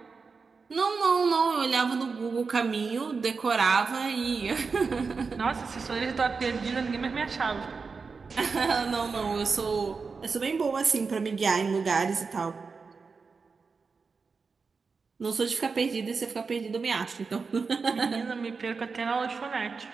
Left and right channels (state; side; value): quieter; left; 4.8 dB